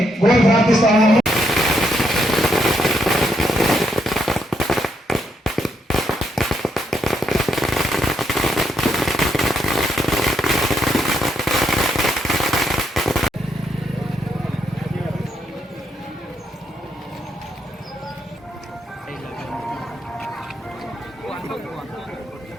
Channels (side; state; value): both; normal; correlation 0.77